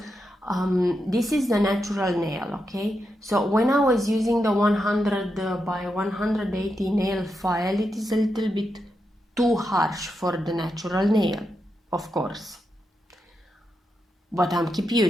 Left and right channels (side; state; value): both; normal; correlation 0.85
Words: this is the natural nail, okay? So when I was using the 100 by 180 nail file, it is a little bit too harsh for the natural nail, of course. But I'm keep